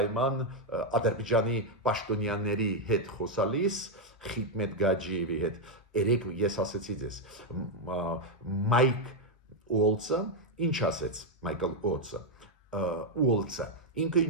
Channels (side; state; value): both; normal; correlation 0.02